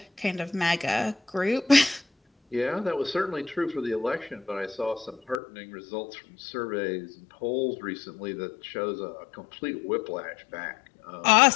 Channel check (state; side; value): drops out; right; at 5.4 s